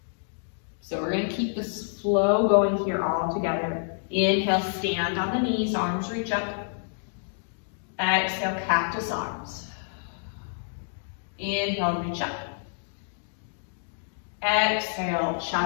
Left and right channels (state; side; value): silent; right; digital silence